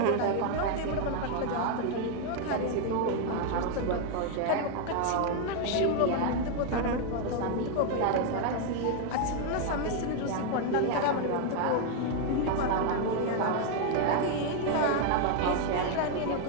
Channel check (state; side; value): different; both; correlation 0.01